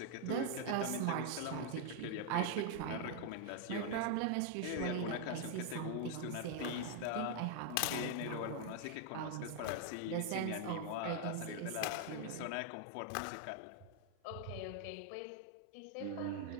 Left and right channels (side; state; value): both; different; correlation 0.00